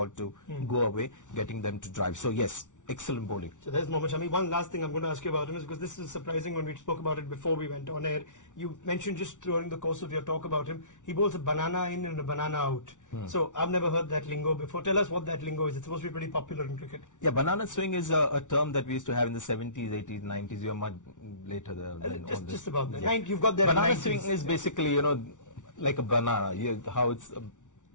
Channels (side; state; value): right; late; 0.86 ms